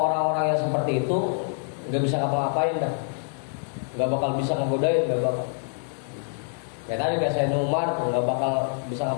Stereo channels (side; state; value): right; silent; digital silence